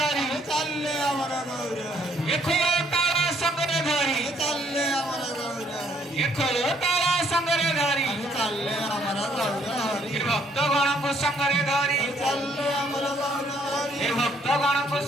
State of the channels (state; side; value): normal; both; correlation 0.66